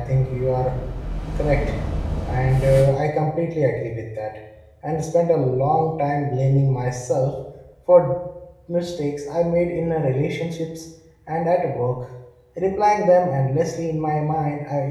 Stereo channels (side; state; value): both; identical; correlation 1.00